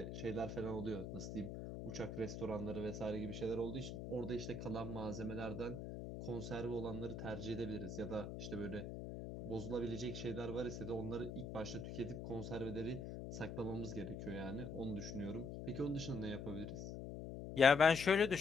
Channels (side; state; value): left; noise; hum, 7 dB below the sound